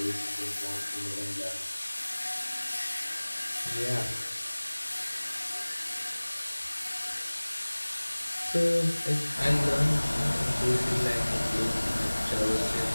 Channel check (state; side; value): inverted; both; correlation -1.00